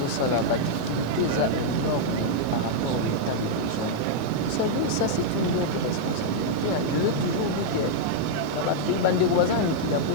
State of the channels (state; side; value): different; both; correlation -0.02